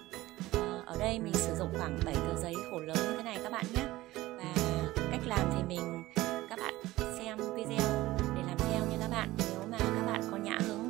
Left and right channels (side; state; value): left; quieter; 17.6 dB